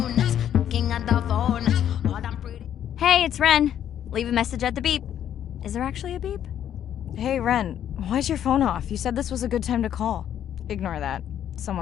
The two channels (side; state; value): right; quieter; 10.2 dB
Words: looking at the phone. All them pretty. Hey, it's Ren. Leave a message at the beep. Is there actually a beep? Hey, Ren, why's your phone off? You said this was a good time to call. Ignore that.